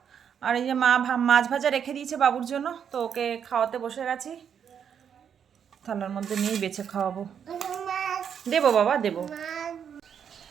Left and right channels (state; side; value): quieter; left; 7.9 dB